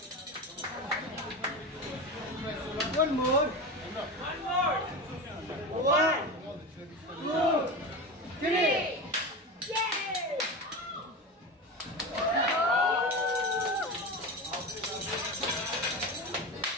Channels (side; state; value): both; normal; correlation 0.24